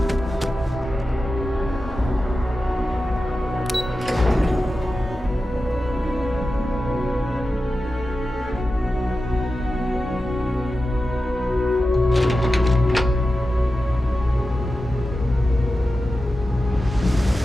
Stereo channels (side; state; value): both; normal; correlation 0.92